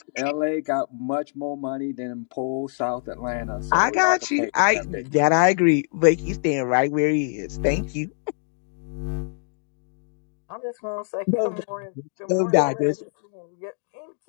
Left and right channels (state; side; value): silent; right; 62 dB below the other